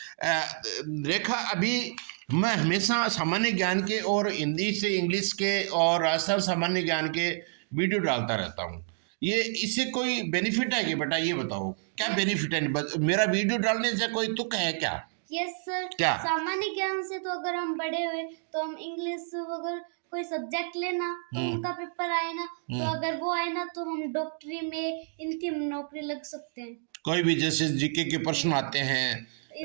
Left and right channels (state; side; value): silent; left; digital silence